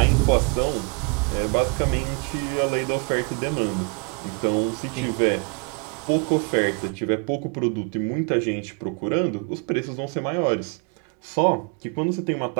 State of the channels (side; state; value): left; quieter; 34.7 dB